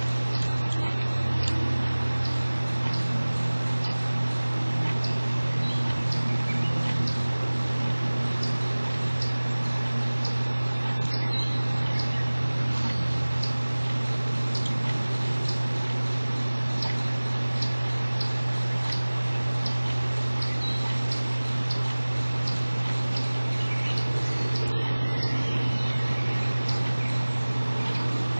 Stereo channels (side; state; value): both; inverted; correlation -1.00